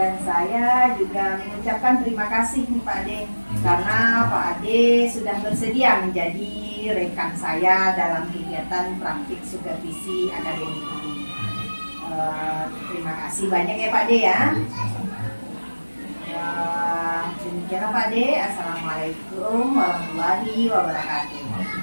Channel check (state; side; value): inverted; both; correlation -1.00